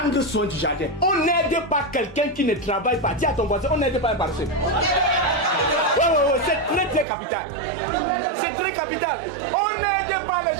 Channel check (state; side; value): drops out; left; at 7.1 s